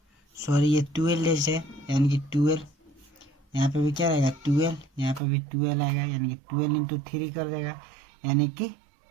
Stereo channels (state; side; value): drops out; left; at 5.2 s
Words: सॉरी ये 12 है यानी कि 12, यहाँ पे भी क्या रहेगा 12, यहाँ पे भी 12 आएगा यानी कि 12 × 3 कर देगा यानी कि